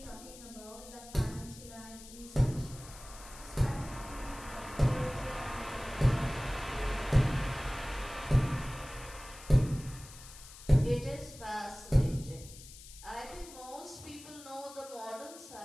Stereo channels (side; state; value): left; noise; hiss, 17 dB below the sound